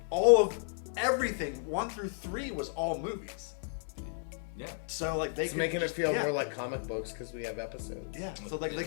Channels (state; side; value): silent; right; digital silence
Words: all of everything 1 through 3 was all movies. Yeah. So like they It's could making just, it feel yeah. more like comic books because we have episodes. Yeah. So like they